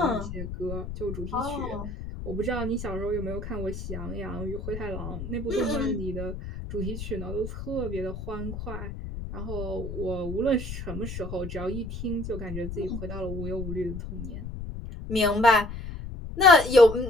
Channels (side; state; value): left; noise; rumble, 8 dB below the sound